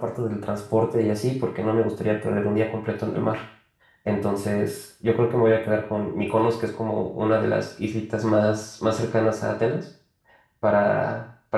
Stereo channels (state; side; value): identical; both; correlation 1.00